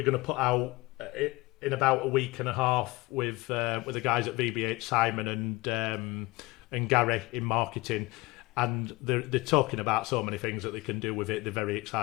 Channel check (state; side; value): quieter; right; 22.1 dB